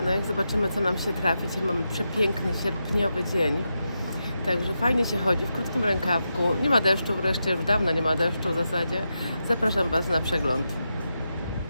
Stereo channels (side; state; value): both; inverted; correlation -0.87